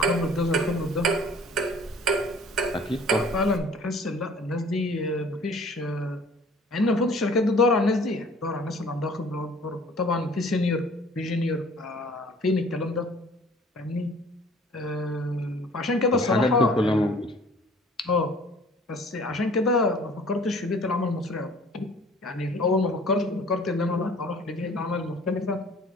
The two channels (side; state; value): both; normal; correlation 0.51